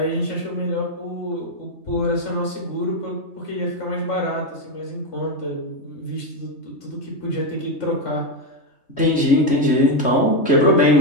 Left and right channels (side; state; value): right; late; 3.3 ms